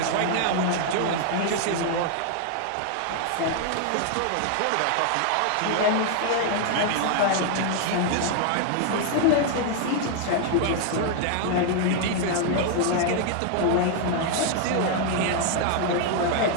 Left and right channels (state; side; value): different; both; correlation 0.00